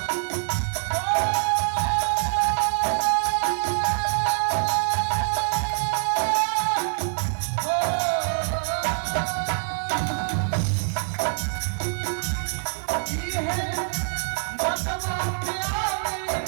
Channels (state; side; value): silent; left; digital silence